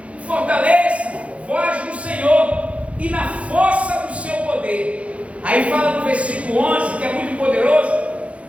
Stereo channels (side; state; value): left; late; 0.063 ms